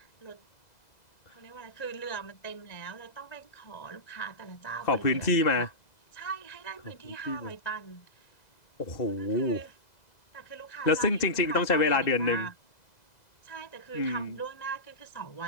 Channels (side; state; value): right; late; 2.0 ms